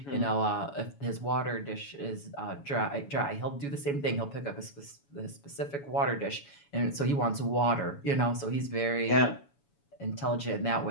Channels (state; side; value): late; right; 7.1 ms